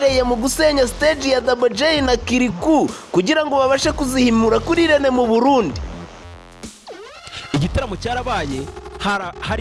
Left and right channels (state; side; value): identical; both; correlation 1.00